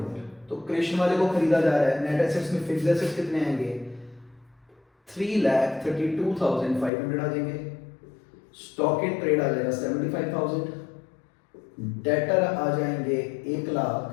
तो कृष्ण वाले को खरीदा जा रहा है, नेट एसेट्स में फिक्स्ड एसेट्स कितने आएंगे, 3,32,500 आ जाएंगे, स्टॉक इन ट्रेड आ जाएगा 75,000, डेटर आ जाएंगे 1 लाख,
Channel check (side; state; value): right; drops out; at 6.9 s